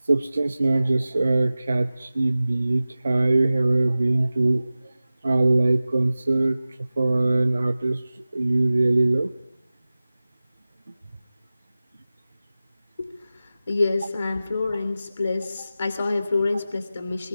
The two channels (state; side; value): inverted; both; correlation -0.96